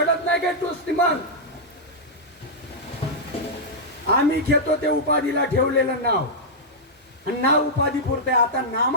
नाही काय? तूच मग आम्ही घेतो ते उपाधीला ठेवलेलं नाव. आणि नाव उपाधी पुरते. आता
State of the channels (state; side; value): normal; both; correlation -0.08